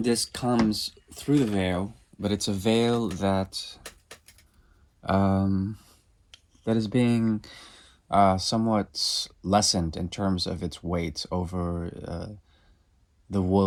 comes through the veil, but it's a veil that that is being somewhat lessened in terms of its weight over the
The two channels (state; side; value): identical; both; correlation 1.00